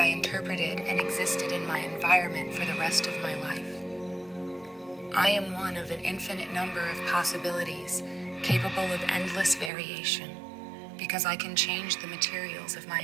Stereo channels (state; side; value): drops out; left; at 9.7 s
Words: interpreted and existed in my environment for the rest of my life. I am one of an infinite number of possibilities capable of endless variation because I can change the materials of my